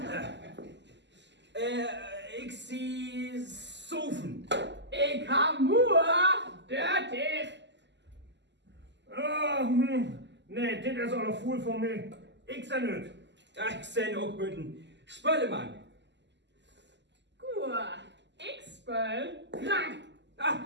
Ich sehe Sofen. Ich har mur, dørtig. Nee, dit is al een voel voor mij. Ik zijn het. Ich sehe auch guten Spöllemann. Gur, ich spøl, krank.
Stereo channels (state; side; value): late; left; 0.51 ms